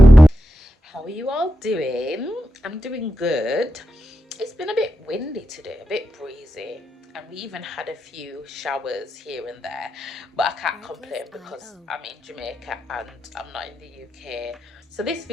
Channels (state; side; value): normal; both; correlation 0.88